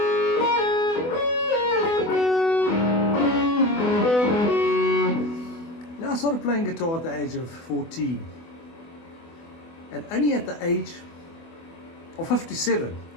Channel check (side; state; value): right; late; 24 ms